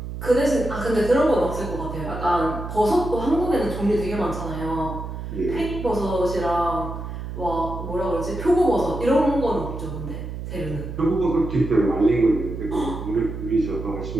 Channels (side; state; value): right; noise; hum, 7 dB below the sound